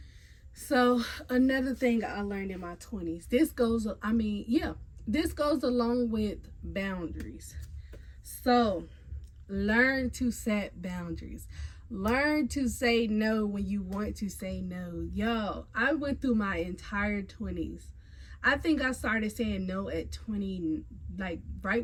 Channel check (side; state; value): both; identical; correlation 1.00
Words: So another thing I learned in my 20s, this goes along with boundaries. So learn to set boundaries. Learn to say no when you want to say no. Yo, I went through my entire 20s. I think I started saying no at 20, like